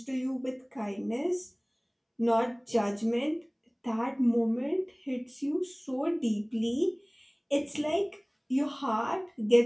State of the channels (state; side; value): identical; both; correlation 1.00